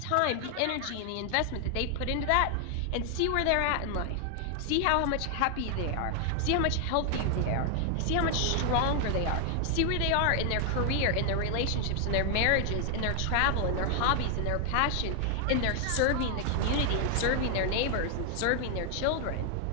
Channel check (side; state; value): both; different; correlation 0.00